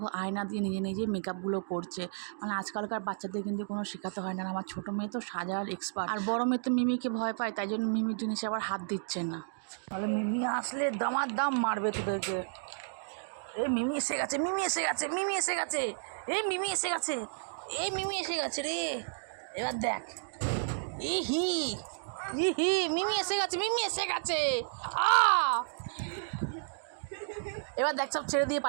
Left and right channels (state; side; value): silent; left; digital silence